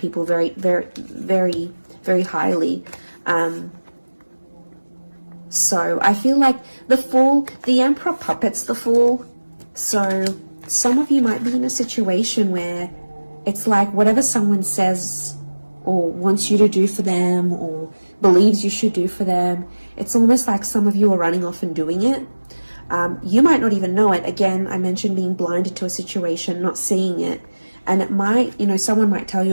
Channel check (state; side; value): inverted; both; correlation -1.00